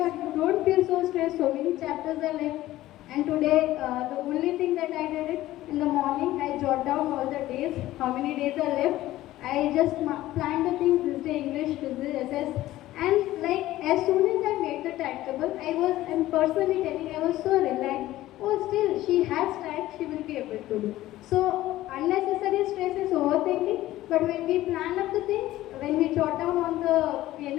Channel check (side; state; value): right; quieter; 15.5 dB